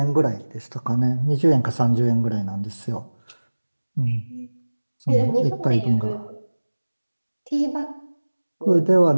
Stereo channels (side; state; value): both; inverted; correlation -1.00